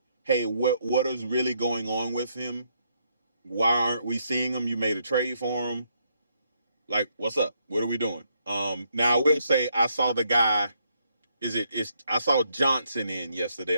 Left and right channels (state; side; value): inverted; both; correlation -0.75